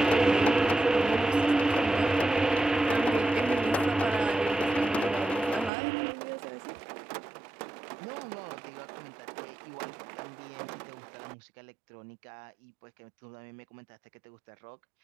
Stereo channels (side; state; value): left; drops out; at 5.7 s